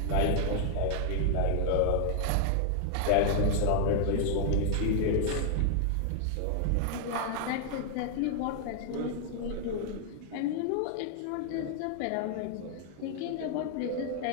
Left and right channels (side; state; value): both; different; correlation 0.00